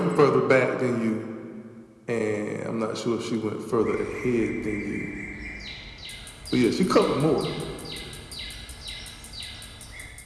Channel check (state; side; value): identical; both; correlation 1.00